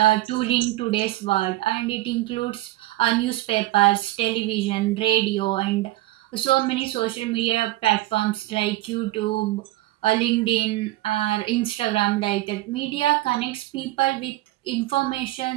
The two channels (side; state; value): left; quieter; 17.1 dB